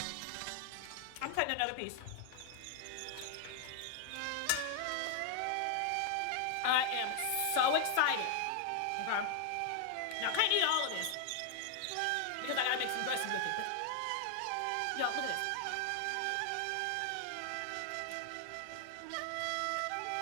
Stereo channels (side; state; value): both; different; correlation 0.00